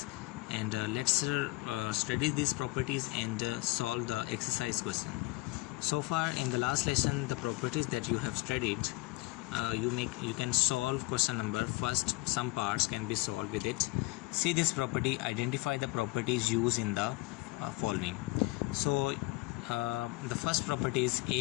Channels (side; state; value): right; quieter; 23.3 dB